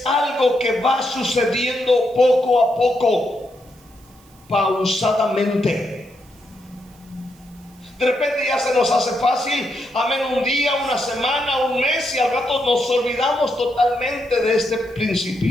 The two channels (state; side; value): noise; right; hiss, 29 dB below the sound